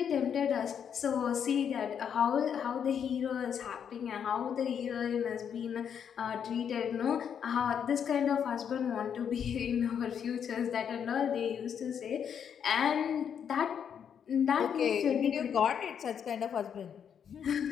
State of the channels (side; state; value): right; quieter; 8.0 dB